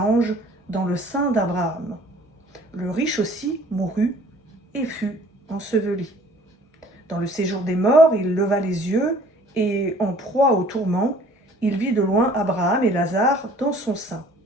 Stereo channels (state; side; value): normal; both; correlation 0.53